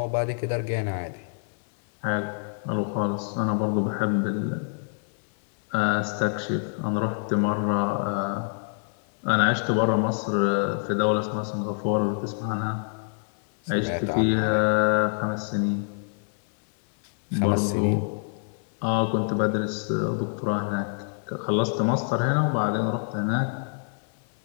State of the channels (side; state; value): right; silent; 61 dB below the other